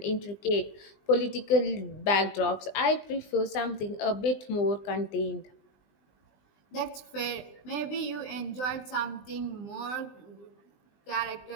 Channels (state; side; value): late; right; 20 ms